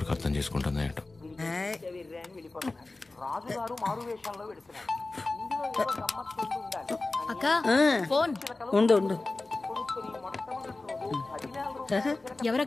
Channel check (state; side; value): quieter; right; 3.2 dB